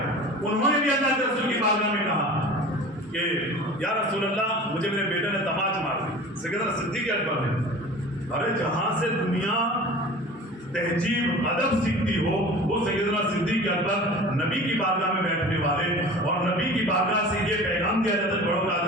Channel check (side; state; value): both; normal; correlation 0.39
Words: انہوں نے بھی اللہ کے رسول کی بارگاہ میں کہا کہ یا رسول اللہ مجھے میرے بیٹے نے تماچ مار دی۔ سیدنا صدیق اکبر نے ارے جہاں سے دنیا تہذیب ادب سیکھتی ہو وہ سیدنا صدیق اکبر نبی کی بارگاہ میں بیٹھنے والے اور نبی کی بارگاہ سے یہ پیغام دیا جاتا ہے بڑوں کا